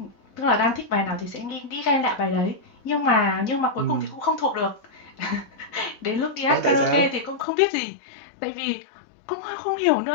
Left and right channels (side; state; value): right; drops out; at 7.5 s